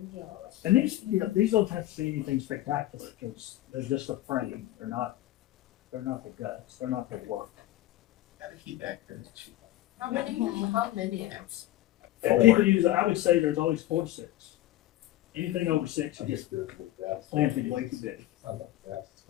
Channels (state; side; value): quieter; right; 15.1 dB